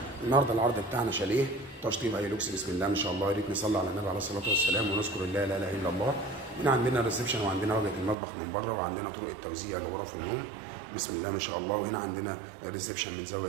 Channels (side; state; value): left; drops out; at 8.2 s